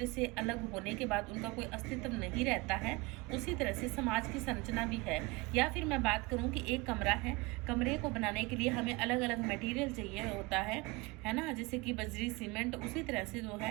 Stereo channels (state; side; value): quieter; left; 24.2 dB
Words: से अलग होने के बाद उनका कोई अस्तित्व नहीं रहता है, उसी तरह से समाज की संरचना भी है। या फिर मैं बात करूं कि एक कमरा है, कमरे को बनाने के लिए हमें अलग अलग मटेरियल चाहिए होता है ना, जैसे कि बजरी, सीमेंट। उसी तरह से जो